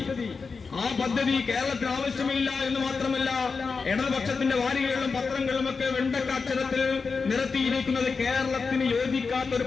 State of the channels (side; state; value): right; quieter; 4.8 dB